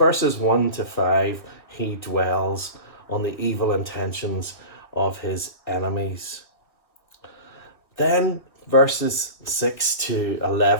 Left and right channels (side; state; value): right; late; 1.5 ms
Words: 1 to 5, he dwells on the evil intentions of his enemies. Then verses 6 to